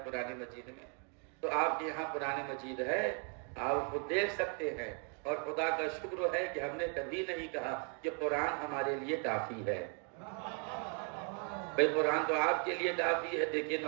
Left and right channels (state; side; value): quieter; left; 39.9 dB